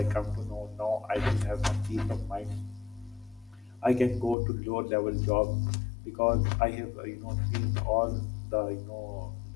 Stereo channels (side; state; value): right; drops out; at 4.4 s